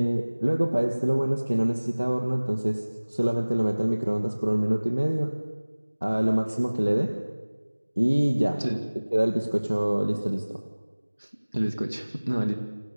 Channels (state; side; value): inverted; both; correlation -1.00